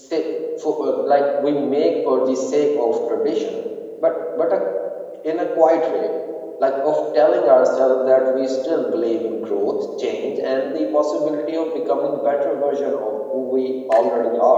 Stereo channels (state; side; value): identical; both; correlation 1.00